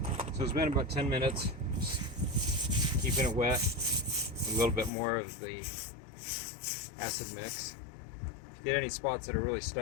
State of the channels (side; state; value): right; drops out; at 4.9 s